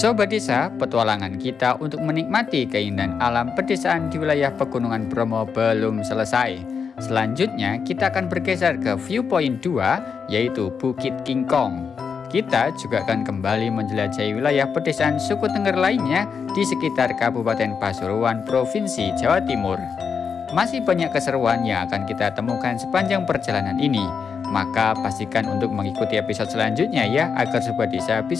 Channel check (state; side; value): quieter; right; 6.2 dB